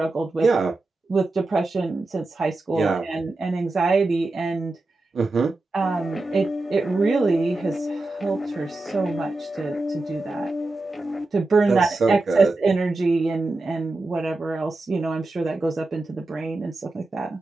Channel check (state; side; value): quieter; left; 3.1 dB